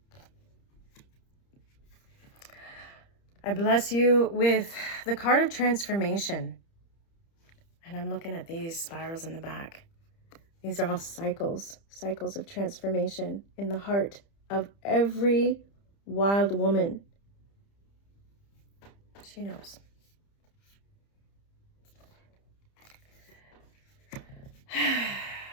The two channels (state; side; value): late; right; 30 ms